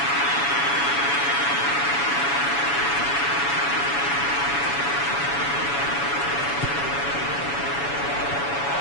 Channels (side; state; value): right; late; 7.1 ms